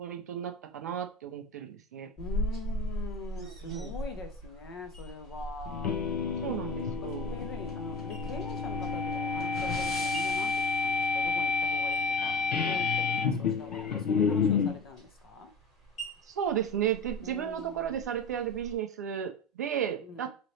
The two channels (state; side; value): normal; both; correlation 0.33